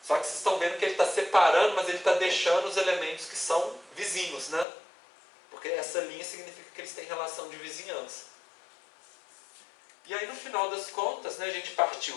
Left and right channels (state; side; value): drops out; right; at 4.7 s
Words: Só que vocês estão vendo que ele está separando, mas ele está deixando os elementos que são vizinhos, né? Porque essa linha significa que eles têm relação de vizinhança. E aí, no final das contas, né, a gente partiu